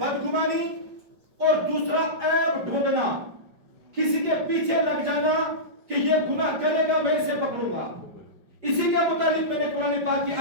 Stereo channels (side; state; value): left; late; 5.4 ms